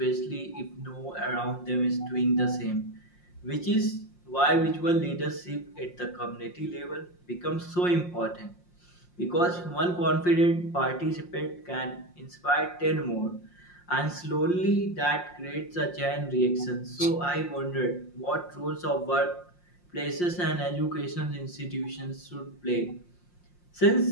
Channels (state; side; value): late; right; 5.6 ms